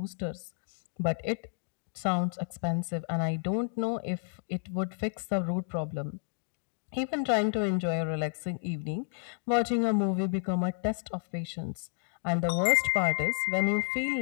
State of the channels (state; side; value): silent; right; digital silence